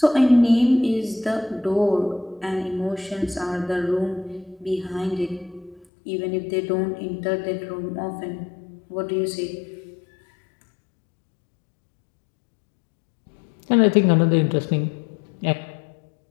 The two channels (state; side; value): drops out; right; at 5.9 s